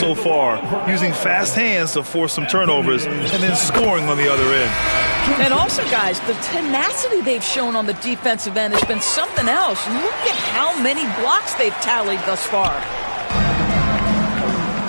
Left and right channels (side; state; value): both; inverted; correlation -1.00